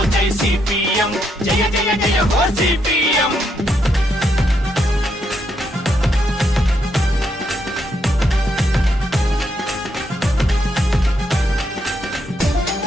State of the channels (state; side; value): normal; both; correlation 0.78